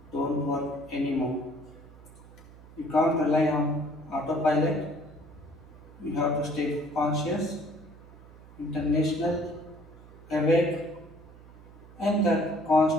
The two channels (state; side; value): noise; right; hum, 21 dB below the sound